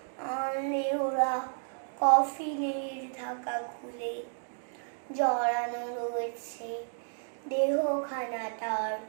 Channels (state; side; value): silent; left; digital silence